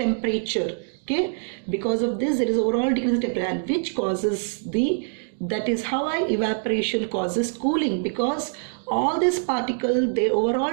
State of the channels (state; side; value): silent; left; digital silence